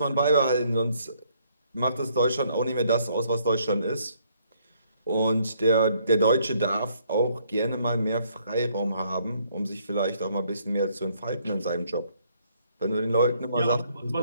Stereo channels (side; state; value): both; inverted; correlation -0.68